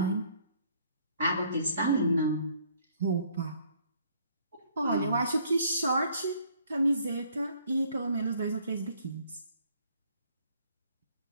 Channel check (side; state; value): both; inverted; correlation -0.62